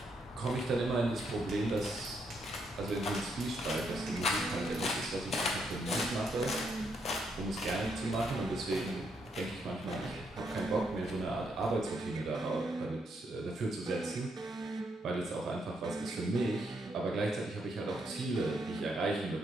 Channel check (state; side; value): normal; both; correlation 0.76